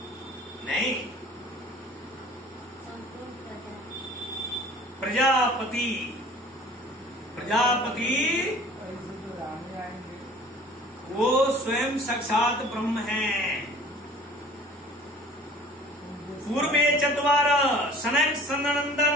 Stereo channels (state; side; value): normal; both; correlation 0.48